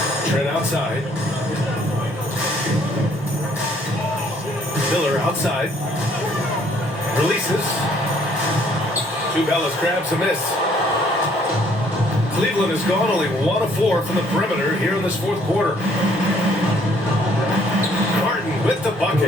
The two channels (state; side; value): normal; both; correlation 0.63